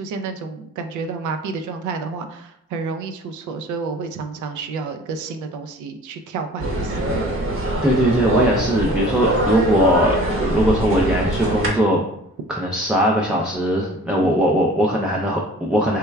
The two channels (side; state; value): both; normal; correlation 0.46